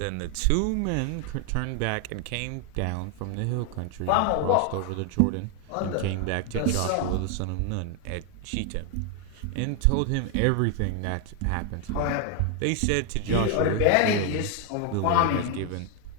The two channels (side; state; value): both; different; correlation 0.00